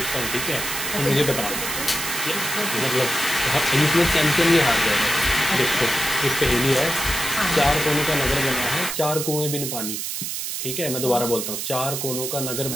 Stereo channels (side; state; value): right; noise; hiss, 4 dB below the sound